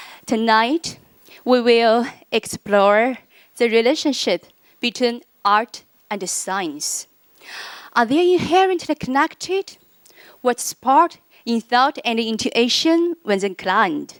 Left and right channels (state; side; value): identical; both; correlation 1.00